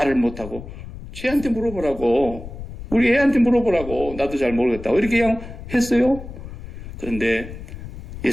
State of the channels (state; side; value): noise; left; rumble, 12 dB below the sound